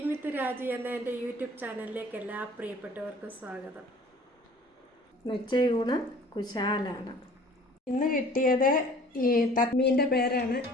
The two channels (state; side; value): normal; both; correlation 0.50